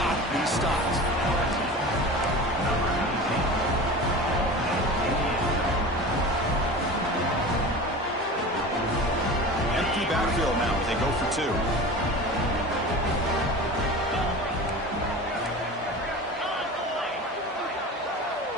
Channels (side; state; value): both; normal; correlation 0.34